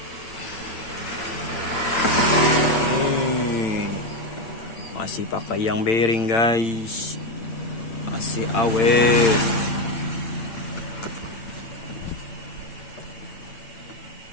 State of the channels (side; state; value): right; late; 8.8 ms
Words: Masih pakai yang bearing guys, masih awet.